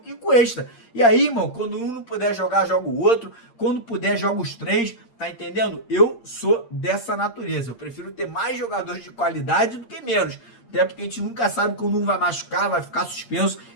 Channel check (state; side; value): late; right; 8.6 ms